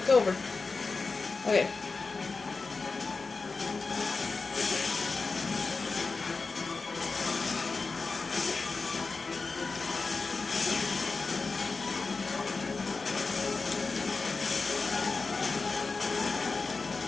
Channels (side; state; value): right; quieter; 4.1 dB